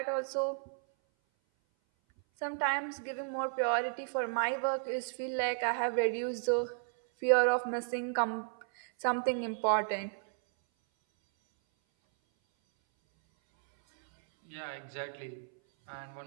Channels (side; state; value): left; silent; 56 dB below the other